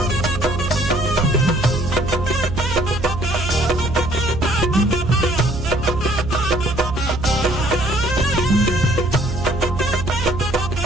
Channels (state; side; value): noise; right; hum, 6 dB below the sound